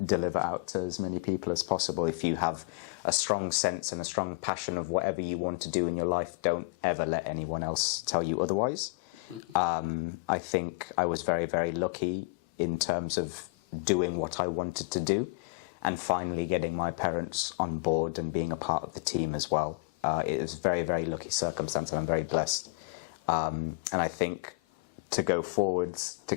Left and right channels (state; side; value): quieter; right; 30.4 dB